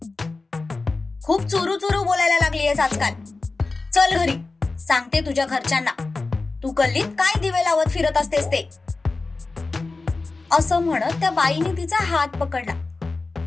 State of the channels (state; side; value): quieter; right; 3.6 dB